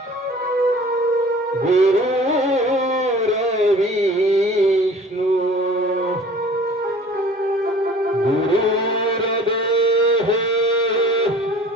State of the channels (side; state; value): both; normal; correlation 0.47